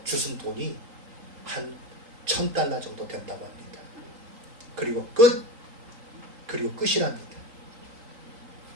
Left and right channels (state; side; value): late; left; 3.8 ms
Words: 주순 돈이 한 1,000달러 정도 된다고 합니다. 그리고 끝이랍니다.